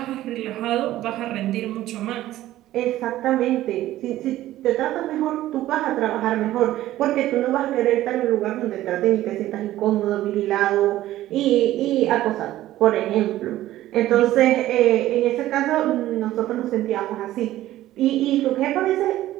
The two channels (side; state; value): left; quieter; 14.6 dB